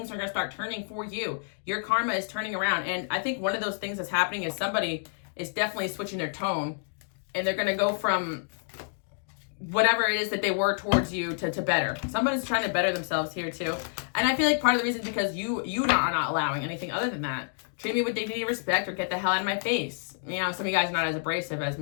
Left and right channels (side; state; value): right; silent; digital silence